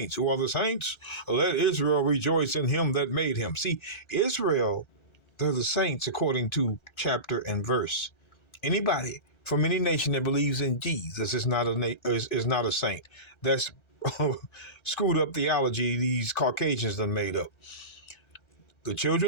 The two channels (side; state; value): right; late; 1.3 ms